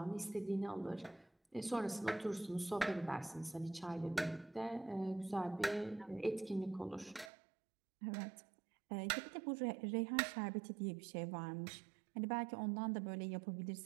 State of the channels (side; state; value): left; drops out; at 7.3 s